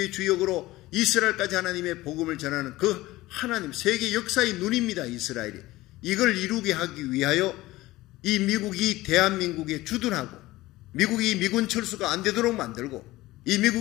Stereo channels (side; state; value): right; quieter; 18.1 dB